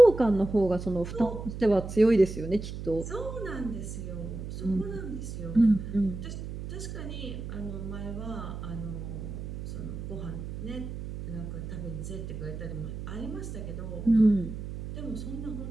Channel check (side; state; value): right; noise; hum, 8 dB below the sound